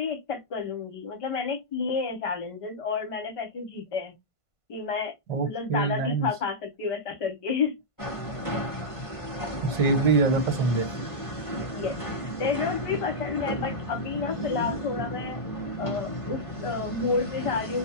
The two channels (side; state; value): right; late; 1.5 ms